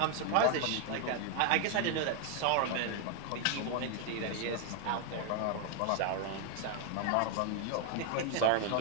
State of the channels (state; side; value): different; both; correlation 0.00